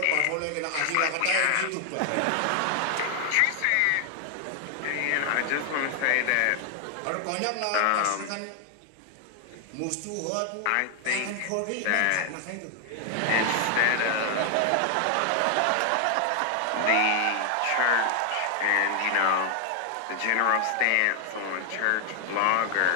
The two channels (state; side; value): different; both; correlation 0.00